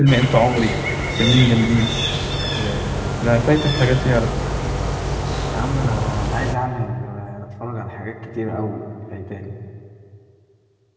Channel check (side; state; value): both; identical; correlation 1.00